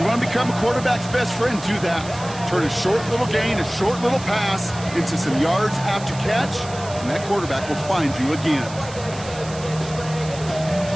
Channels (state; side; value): noise; right; hiss, 15 dB below the sound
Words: want to become a quarterback's best friend, do that. Turn a short little gain, a short little pass into some yards after catch, and that quarterback will find you again.